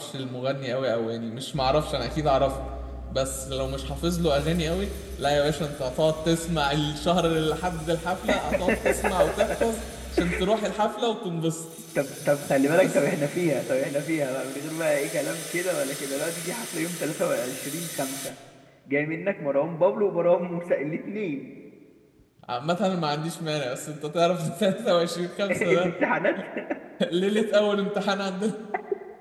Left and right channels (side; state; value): both; identical; correlation 1.00